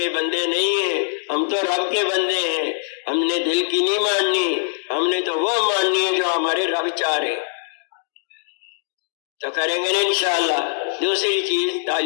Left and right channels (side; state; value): right; silent; digital silence